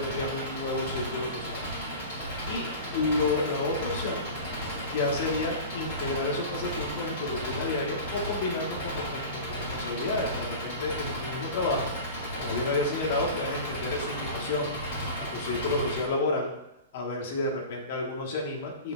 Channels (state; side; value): inverted; both; correlation -0.33